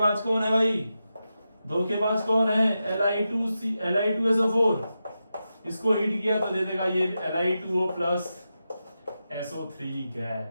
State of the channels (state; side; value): inverted; both; correlation -0.90